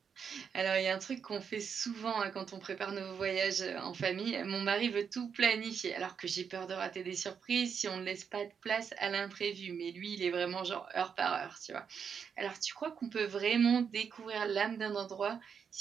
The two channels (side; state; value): left; quieter; 6.8 dB